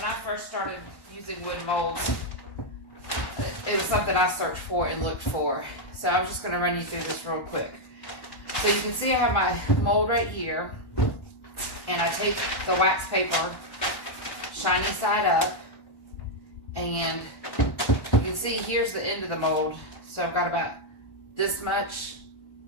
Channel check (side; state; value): right; late; 1.1 ms